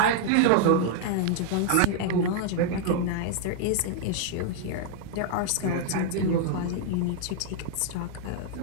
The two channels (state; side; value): different; both; correlation -0.01